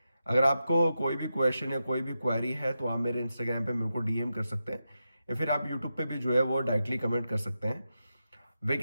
अगर आपको कोई भी क्वेश्चन या कोई भी क्वेरी है तो आप मेरे इंस्टाग्राम पे मेरे को डीएम कर सकते हैं या फिर आप यूट्यूब पे भी जो है वो डायरेक्टली कमेंट कर सकते हैं।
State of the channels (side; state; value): both; inverted; correlation -0.89